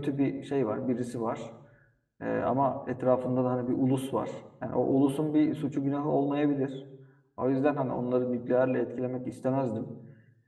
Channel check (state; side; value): identical; both; correlation 1.00